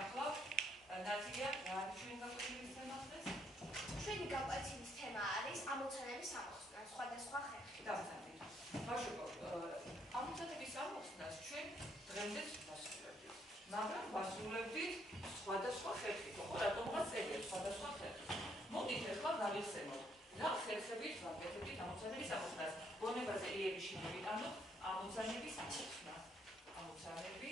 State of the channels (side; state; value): both; normal; correlation 0.71